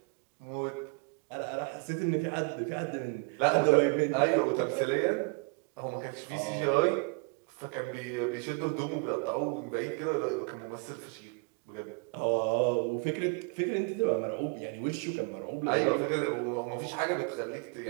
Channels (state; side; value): quieter; left; 34.1 dB